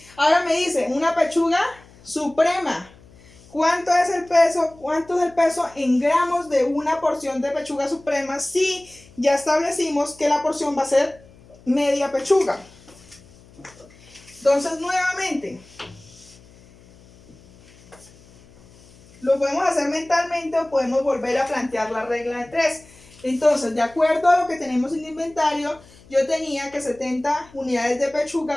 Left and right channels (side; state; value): left; noise; hum, 25 dB below the sound